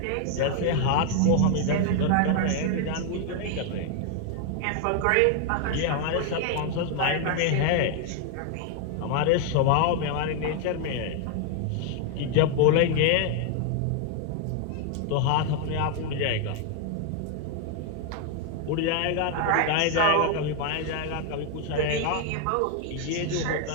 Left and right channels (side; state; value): both; different; correlation 0.00